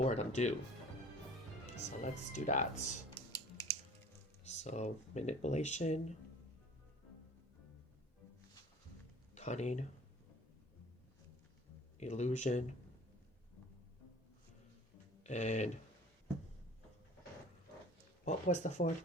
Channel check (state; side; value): normal; both; correlation 0.47